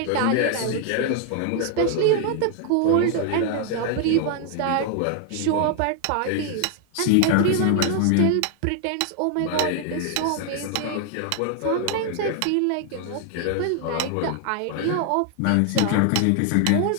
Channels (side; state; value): both; different; correlation 0.00